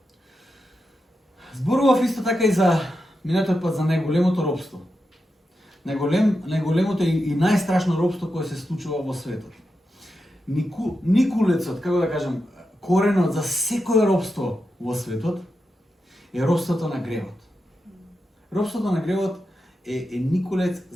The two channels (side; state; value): both; normal; correlation 0.88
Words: Зборував исто така и за минатиот пат за најголемото робство. Најголемото и најстрашно робство кое се случува во светот. Никулецот, како да кажам, коренот за секое робство во светот е робството на гревот. Робството на гревот е никулец